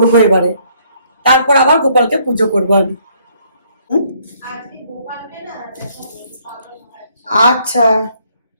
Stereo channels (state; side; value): inverted; both; correlation -0.66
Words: এবারে, তারপর আবার গোপালকে পুজো করবো আমি। আচ্ছা,